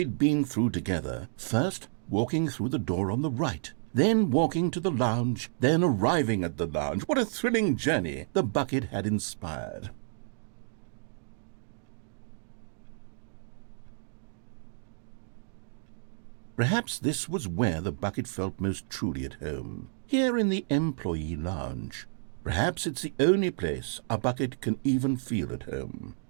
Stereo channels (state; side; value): silent; left; digital silence